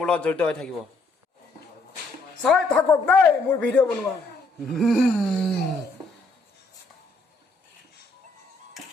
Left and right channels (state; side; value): quieter; right; 3.1 dB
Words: লগত জড়িত হৈ থাকিব। চাই থাকক দেই মোৰ ভিডিঅ' বনোৱা।